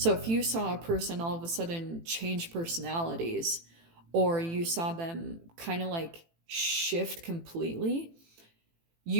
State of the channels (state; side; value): late; left; 18 ms